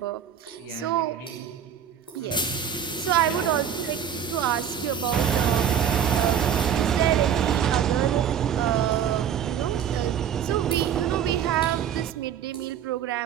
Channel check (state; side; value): quieter; left; 8.7 dB